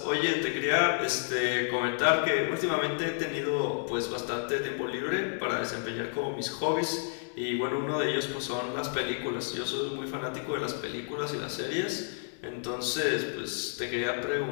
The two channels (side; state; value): right; silent; digital silence